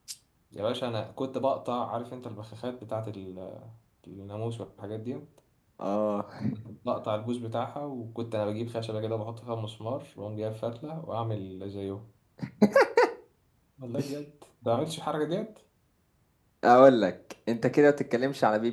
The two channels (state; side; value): identical; both; correlation 1.00